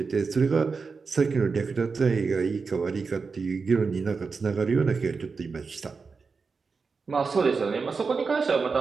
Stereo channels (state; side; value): quieter; left; 4.8 dB